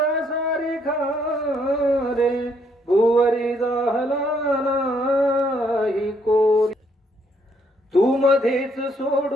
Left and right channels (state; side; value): normal; both; correlation 0.70